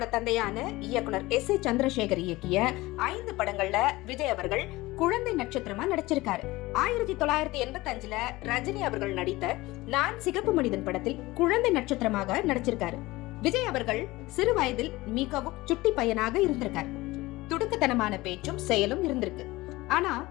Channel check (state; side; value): quieter; right; 19.8 dB